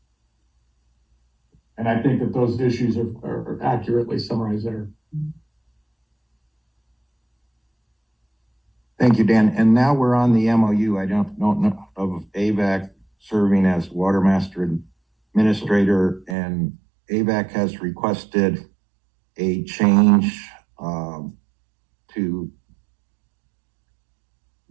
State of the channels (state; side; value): drops out; left; at 16.4 s